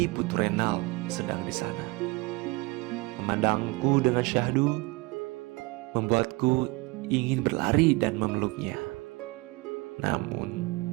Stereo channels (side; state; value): left; quieter; 24.5 dB